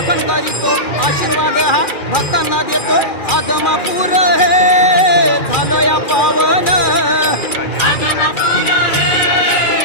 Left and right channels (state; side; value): late; right; 2.4 ms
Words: करीतो, आशीर्वाद हा भक्तांना देतो. आदमापूर हे झालं या पावन,